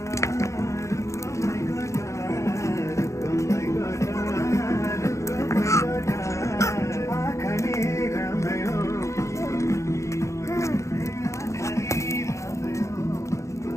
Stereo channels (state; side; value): late; right; 0.14 ms